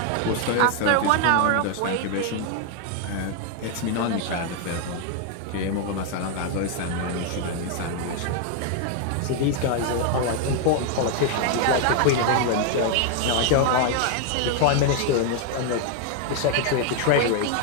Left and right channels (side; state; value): both; different; correlation 0.01